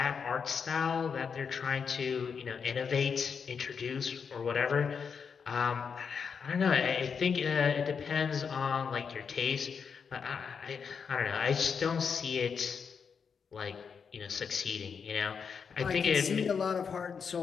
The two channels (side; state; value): right; quieter; 6.2 dB